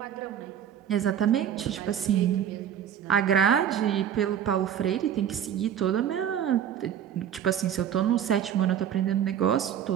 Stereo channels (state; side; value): quieter; left; 9.4 dB